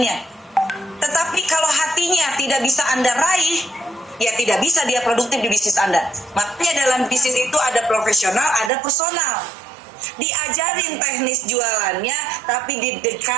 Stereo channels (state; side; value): drops out; left; at 8.7 s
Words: Tetapi kalau hatinya tidak bisa Anda raih, ya tidak bisa dia produktif di bisnis Anda. Makanya dalam bisnis itu ada profesional, ada personal. Diajarin teknis jualannya, tapi